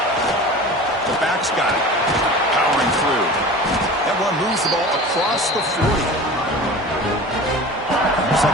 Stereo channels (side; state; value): both; normal; correlation 0.37